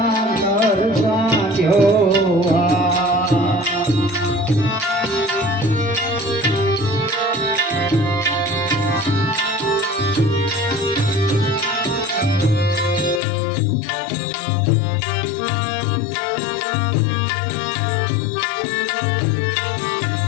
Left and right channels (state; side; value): drops out; right; at 13.2 s